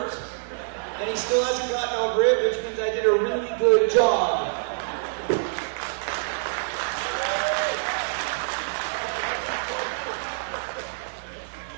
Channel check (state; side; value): silent; left; digital silence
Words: and he still hasn't gotten over it, which means I did a really good job.